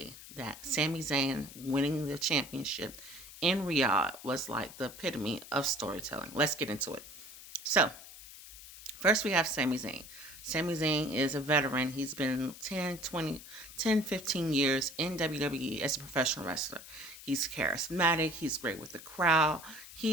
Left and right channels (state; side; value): noise; left; hiss, 16 dB below the sound